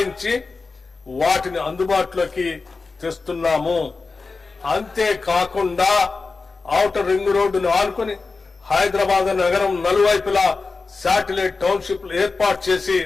వాటిని అందుబాటులోకి తెస్తున్నాము. అంతేకాకుండా ఔటర్ రింగ్ రోడ్డును ఆనుకుని హైదరాబాద్ నగరం నలువైపులా శాటిలైట్ టౌన్షిప్లు ఏర్పాటు చేసి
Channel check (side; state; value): right; quieter; 4.1 dB